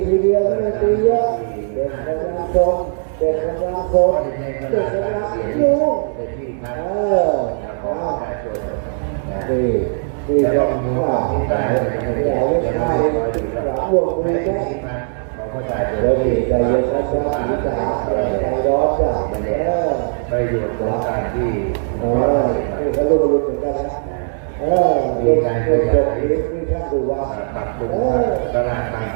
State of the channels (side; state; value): left; silent; digital silence